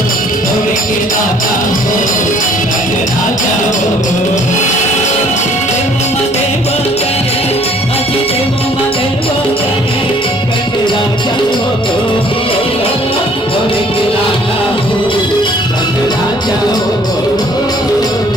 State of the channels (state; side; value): normal; both; correlation 0.58